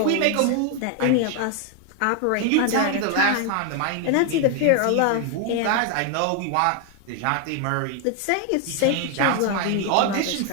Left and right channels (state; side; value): different; both; correlation 0.01